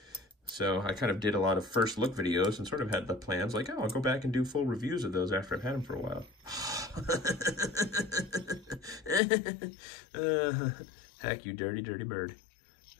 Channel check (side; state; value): right; drops out; at 9.2 s